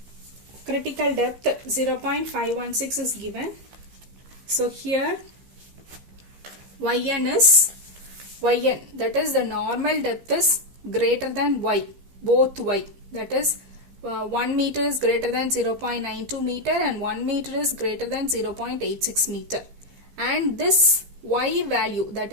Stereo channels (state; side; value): late; left; 15 ms